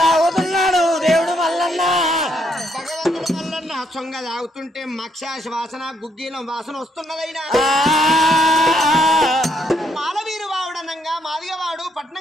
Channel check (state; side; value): normal; both; correlation 0.74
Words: తాగుతున్నాడు దేవుడు మల్లన్న భగవంతుడు మల్లన్న సొంగ తాగుతుంటే మక్షాశ వాసన గుగ్గీలం వాసన వస్తున్నదైనా మాలవీరు వావుడనంగా మాదిగవాడు